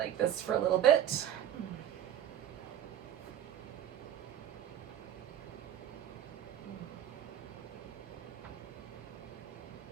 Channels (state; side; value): quieter; left; 10.8 dB